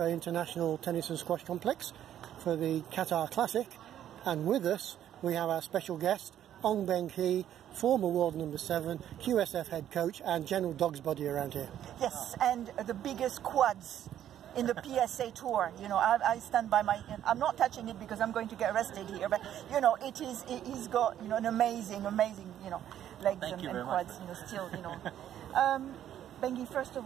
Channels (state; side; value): quieter; left; 10.9 dB